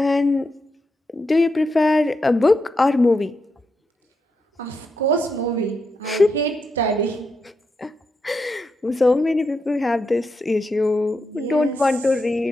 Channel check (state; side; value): normal; both; correlation 0.84